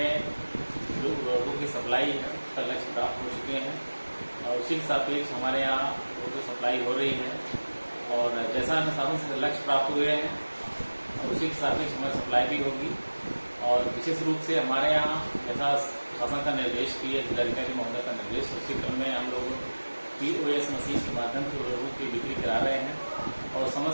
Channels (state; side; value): inverted; both; correlation -1.00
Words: जो उर्वरकों की सप्लाई है उसका लक्ष्य प्राप्त हो चुके हैं और उसी के सापेक्ष हमारे यहाँ उर्वरकों सप्लाई हो रही है और जैसा हमें शासन से लक्ष्य प्राप्त हुए हैं और उसी के सापेक्ष हमें सप्लाई भी होगी। और विशेष रूप से हमारे यहाँ जैसा शासन का निर्देश भी है, जिलाधिकारी महोदय का निर्देश, उसी क्रम में हम लोग POS मशीन के माध्यम से उर्वरकों की बिक्री करा रहे हैं और